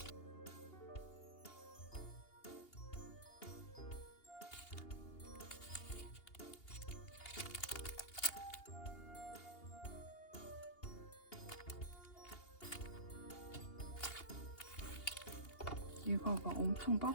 얘가 막 엄청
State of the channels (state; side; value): late; right; 2.8 ms